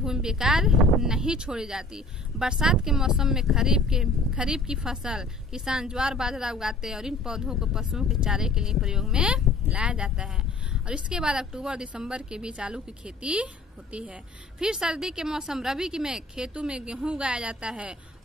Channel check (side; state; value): right; quieter; 3.1 dB